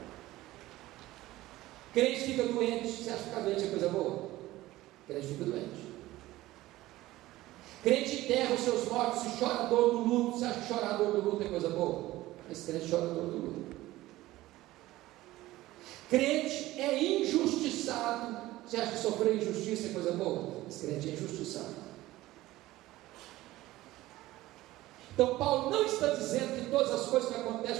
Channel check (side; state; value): left; quieter; 17.0 dB